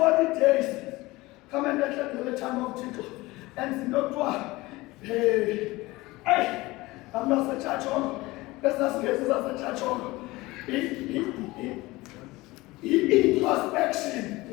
days, come and let the time of Jesus. And not what? Hey, I'm not a church on. That's not a church on. Introspection,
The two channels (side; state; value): right; quieter; 20.6 dB